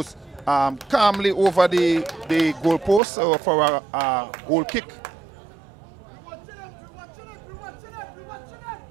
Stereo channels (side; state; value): left; drops out; at 3.0 s